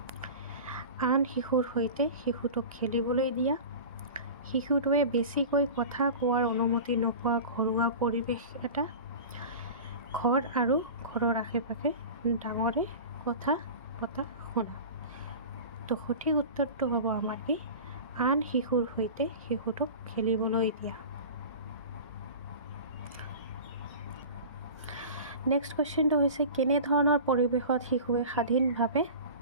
আন শিশুৰ সৈতে শিশুটোক খেলিবলৈ দিয়া, শিশুটোৱে বেছিকৈ কথা কোৱাৰ অনুমতি নোপোৱা ঘৰুৱা পৰিৱেশ এটা, ঘৰ আৰু ঘৰৰ আশে পাশে ডাঙৰে কথা পতা শুনা। তো সঠিক উত্তৰটো হ'ব আমাৰ কি আন শিশুৰ সৈতে শিশুটোক খেলিবলৈ দিয়া। নেক্সট কুৱেশ্যনটো হৈছে কেনেধৰণৰ পৰিৱেশত শিশুৱে স্বাধীনভাৱে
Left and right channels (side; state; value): both; inverted; correlation -0.34